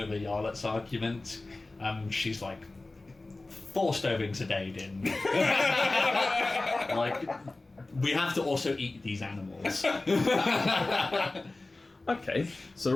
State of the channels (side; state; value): right; quieter; 3.1 dB